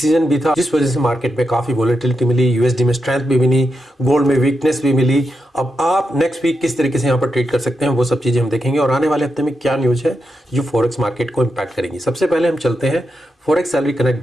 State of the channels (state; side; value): normal; both; correlation 0.86